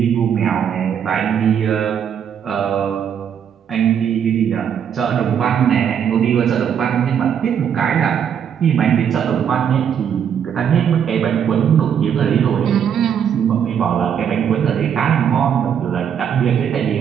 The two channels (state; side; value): quieter; left; 8.3 dB